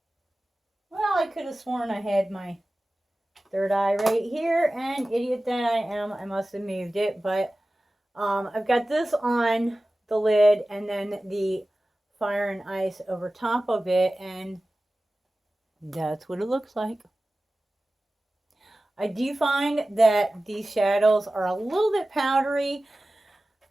Well, I could have sworn I had my third eye right here, and idiot that I am, I must have moved it, but I've got this on the lid and then the Fire and Ice over top of it, and that's what it looks like. I do find that these shadows are a little bit powdery.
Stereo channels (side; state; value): both; normal; correlation 0.96